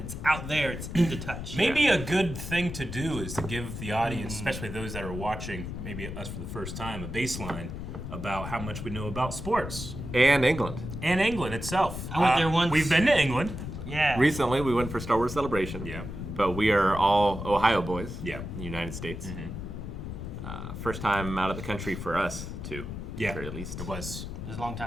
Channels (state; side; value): noise; left; rumble, 7 dB below the sound